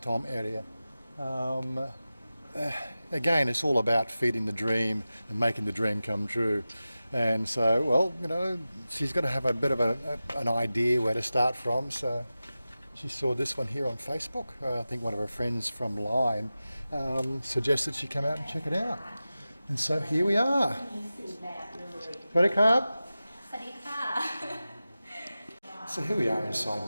area. Again, it's all about feeding the dream and making the dream come true. And so, well, you know, she's got to have a bit of an idea where to start from. So she saw this one here on Facebook. I think one of her friends from Line suggested she come out and check it out. And so here we are. Ready, Carb? So here we are inside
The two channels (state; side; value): inverted; both; correlation -0.95